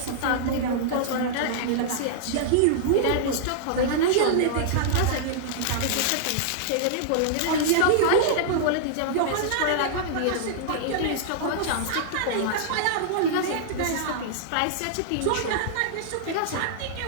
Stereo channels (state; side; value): different; both; correlation -0.01